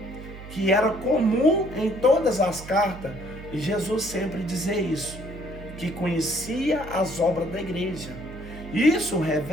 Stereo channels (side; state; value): right; noise; hum, 14 dB below the sound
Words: que era comum em todas as cartas Jesus sempre dizer isso, que conhecia as obras da igreja. Isso